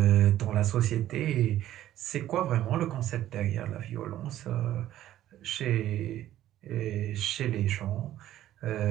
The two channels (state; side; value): quieter; left; 13.0 dB